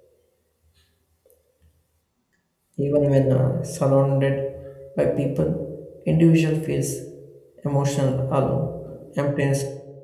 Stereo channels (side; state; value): both; identical; correlation 1.00